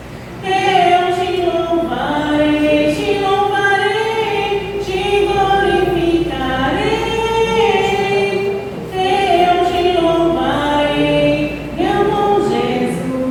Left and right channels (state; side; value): identical; both; correlation 1.00